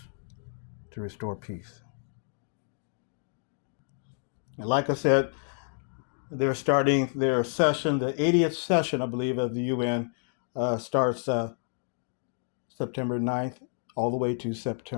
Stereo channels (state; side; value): silent; right; 58 dB below the other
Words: to restore peace. And like I said, they're starting their session, the 80th session, I believe, of the UN starts September 9th all the way to